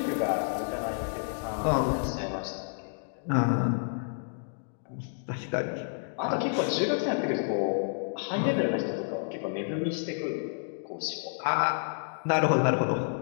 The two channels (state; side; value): silent; right; digital silence